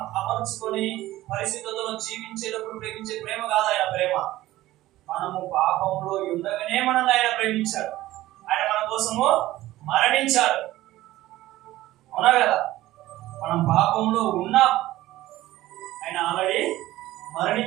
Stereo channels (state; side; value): quieter; left; 16.1 dB